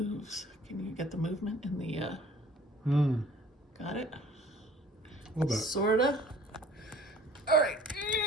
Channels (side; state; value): both; normal; correlation 0.51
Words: Can you get the movement in the, got it? A little bit. Sorta. All right.